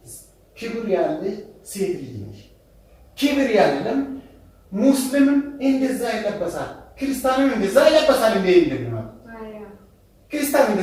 ክብር ያለሽ ሴት ልጅ ነሽ ክብር ያለም ሙስሊምም እንደዛ ይለበሳል ክርስቲያንም እንደዛ ይለበሳል እንዴ እንደምን ክርስቲያን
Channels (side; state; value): both; identical; correlation 1.00